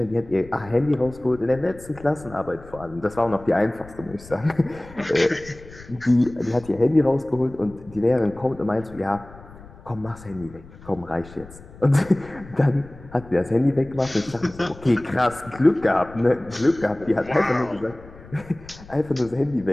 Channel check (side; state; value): left; noise; rumble, 19 dB below the sound